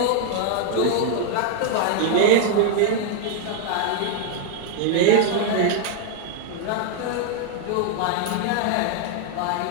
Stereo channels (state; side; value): different; both; correlation 0.00